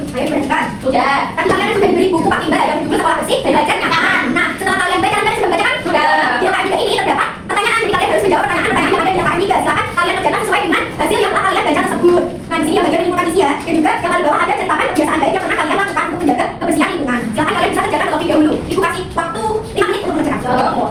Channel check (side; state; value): both; identical; correlation 1.00